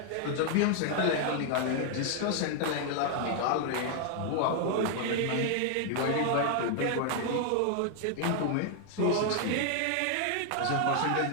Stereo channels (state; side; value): different; both; correlation 0.00